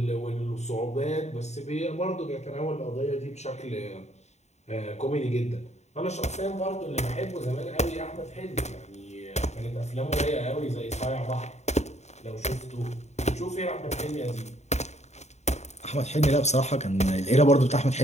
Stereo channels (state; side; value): late; right; 0.32 ms